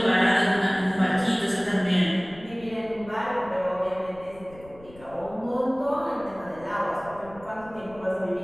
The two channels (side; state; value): left; noise; rumble, 22 dB below the sound